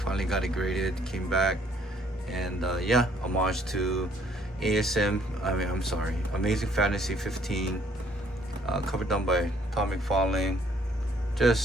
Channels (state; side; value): normal; both; correlation 0.63